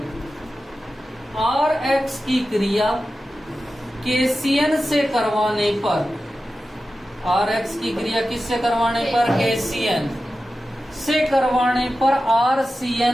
RX की क्रिया KCN से करवाने पर, RX की क्रिया किससे करवाने पर? KCN से करवाने पर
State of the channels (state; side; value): normal; both; correlation 0.93